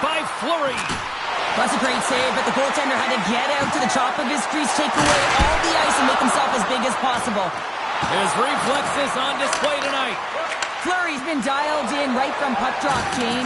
by Fleury. That's a great save, but the goaltender had to get out to the top of his crease, take away all the ice, and make himself as big as possible. His reflexes on display tonight. Fleury's been dialed in right from puck drop,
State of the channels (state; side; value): identical; both; correlation 1.00